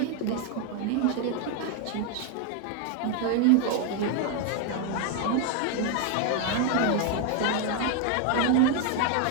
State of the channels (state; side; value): different; both; correlation 0.01